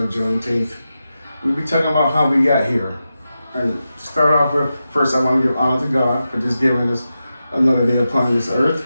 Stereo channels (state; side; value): inverted; both; correlation -0.91